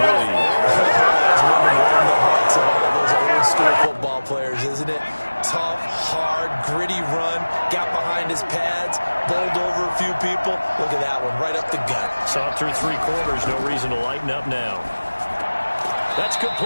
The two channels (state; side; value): inverted; both; correlation -1.00